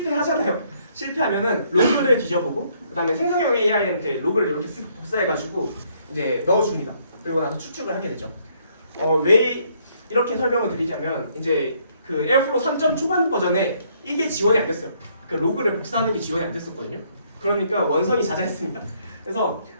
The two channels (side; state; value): both; inverted; correlation -0.68